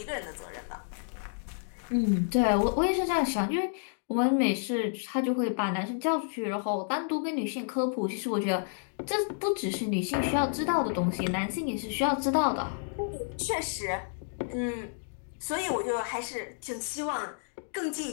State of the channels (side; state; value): right; silent; digital silence